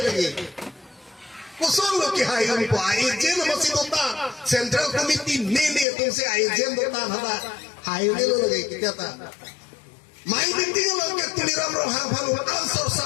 kusong lo ki hayun po agent masih dota central committee nene tung se agent dota hada hayun lo lagi kita ta mai ding lo ke tuliram ro ha phalu answer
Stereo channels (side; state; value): right; drops out; at 5.9 s